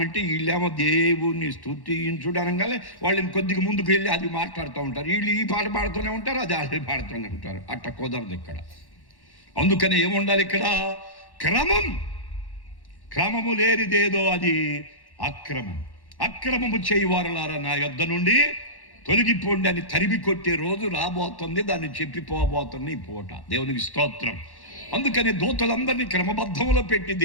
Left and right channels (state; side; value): late; right; 1.1 ms